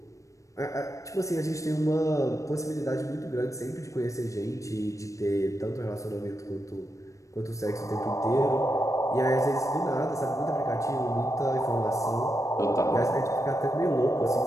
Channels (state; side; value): late; right; 0.15 ms